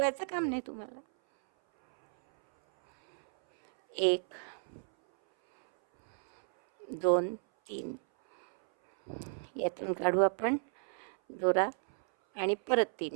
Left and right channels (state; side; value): silent; left; 56 dB below the other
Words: काम नाही तुम्हाला. 1 2 3. यातून काढू आपण दोरा आणि परत